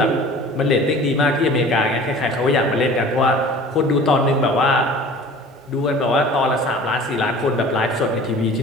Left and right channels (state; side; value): normal; both; correlation 0.44